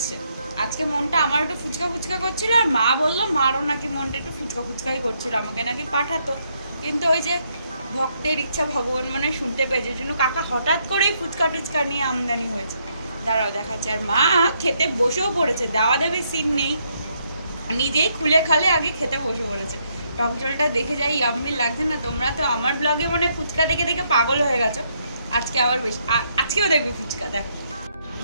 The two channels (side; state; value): both; inverted; correlation -0.75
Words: আজকে মনটা আমার একটু ফুচকা ফুচকা করছিল, আর মা বললো মারও নাকি মনটা একটু ফুচকা ফুচকাই করছিল, আমাকে নাকি পাঠাতো। কিন্তু ওই যে ভক্তের ইচ্ছা ভগবান মানে শুনতে পেয়েছে, জন্য কাকা হঠাৎ করেই ফুচকা টুচকা নিয়ে আমদানি হয়েছে। দাঁড়াও দেখাচ্ছে। আর মা খেতে বসেও পড়েছে, দাওয়া দেবে সিন নেই, নিজেই খুলে খালে আগে খেতে বসে পড়েছে। টক জলটা দেখে যাই ইয়াম্মি লাগছে না? তোমরা তো আমার ব্লগে মানে ফুচকা দেখে দেখে পাগল হয়ে গেছো। আজকে আবার বেশি, আজকেও দেখবে ফুচকা। দেখো,